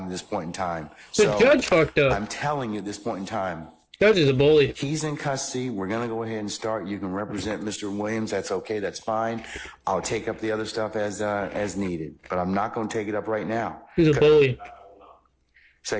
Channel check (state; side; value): identical; both; correlation 1.00